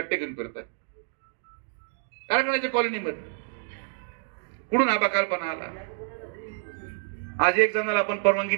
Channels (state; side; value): silent; left; digital silence